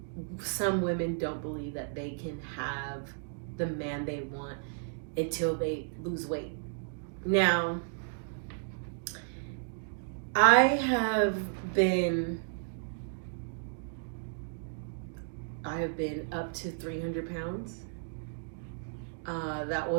some women don't believe that they can have the man they want until they lose weight. Now, I have been up to 300 pounds. That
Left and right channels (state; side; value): silent; left; digital silence